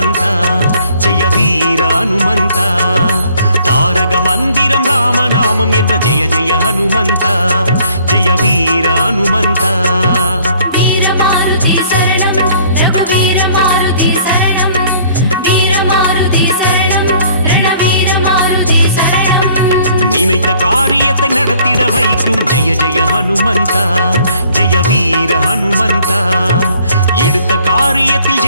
ஜெய வீர ஹனுமந்த தாரக மந்திரம் ராமநாமம் என்ற ஜெய ஜெய ஹனுமந்த ஜெய வீர ஹனுமந்த நினைத்த காரியத்தை நடத்திட வைக்கும் ஜெய ஜெய ஹனுமந்த ஜெய வீர ஹனுமந்த எடுத்த காரியத்தில்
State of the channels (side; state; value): both; inverted; correlation -0.59